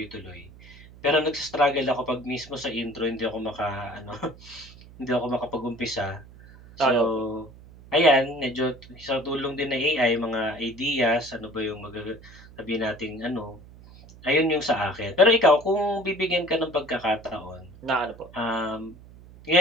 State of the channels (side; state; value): right; noise; hum, 20 dB below the sound